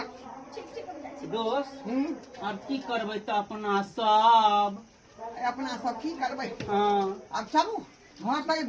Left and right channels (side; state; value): both; identical; correlation 1.00